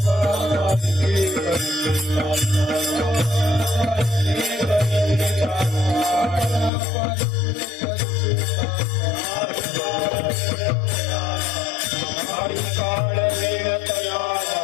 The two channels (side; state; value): right; drops out; at 6.7 s